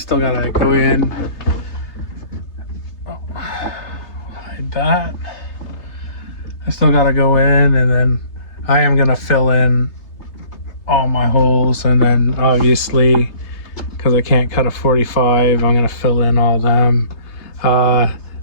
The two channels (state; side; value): late; right; 3.3 ms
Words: go in. Oh, hide that. I still gotta go in, and then I am gonna fill in all my holes, and then obviously, because I can't cut a 45, I'm gonna fill in all them.